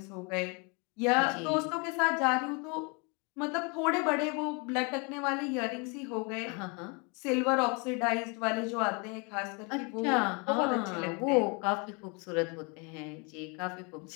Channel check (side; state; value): right; quieter; 32.3 dB